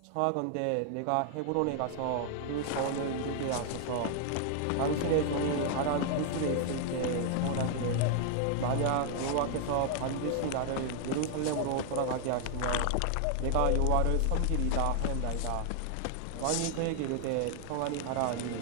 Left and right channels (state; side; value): different; both; correlation 0.00